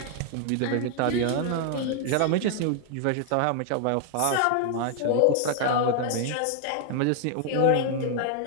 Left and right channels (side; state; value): both; different; correlation 0.00